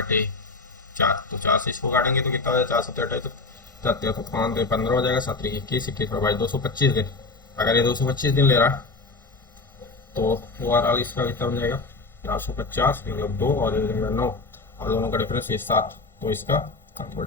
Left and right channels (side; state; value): right; quieter; 3.6 dB